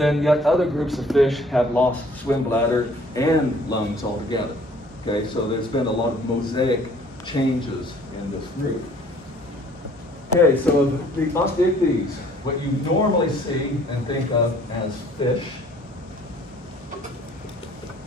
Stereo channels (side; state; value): both; normal; correlation 0.56